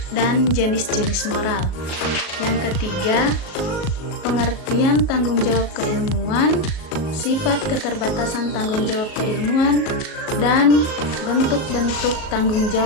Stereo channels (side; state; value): right; late; 38 ms